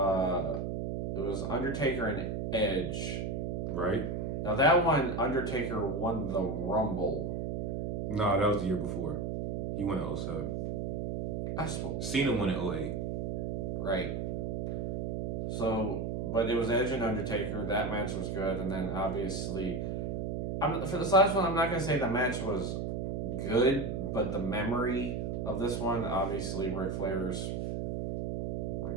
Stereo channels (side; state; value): right; noise; hum, 2 dB below the sound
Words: it was Undertaker and Edge. Right? Now that one, Undertaker won the Rumble. No, that was the year before. He won in 07. I suppose. Cena won in 08. Right. So, but it was Edge and Undertaker. That match was good, and then obviously, for this last one, I'm not gonna say the match was good, but the memory of this one, obviously, Ric Flair's